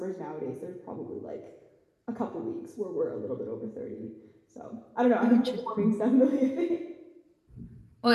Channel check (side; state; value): both; identical; correlation 1.00